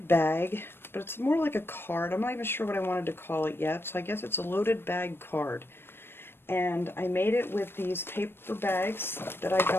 bag, but it's more like a card. I'm not even sure what I wanted to call it yet, so I guess it's a loaded bag card. And I made it with these paper bags that I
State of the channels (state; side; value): late; right; 0.11 ms